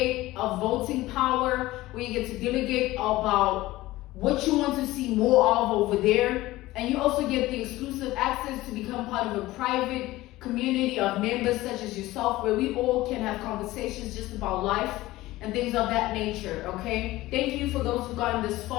a voting power where you get to delegate about what you want to see more of over there. And you also get the exclusive access to become part of a private community of members such as yourself, where we all can have conversations just about life and things of that nature, okay? Thank you for those who've gotten this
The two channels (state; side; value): quieter; right; 17.7 dB